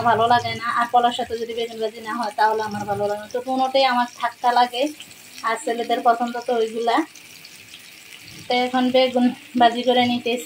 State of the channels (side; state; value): both; identical; correlation 1.00